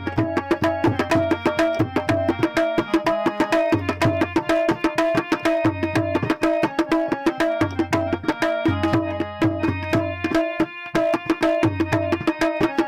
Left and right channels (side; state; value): both; identical; correlation 1.00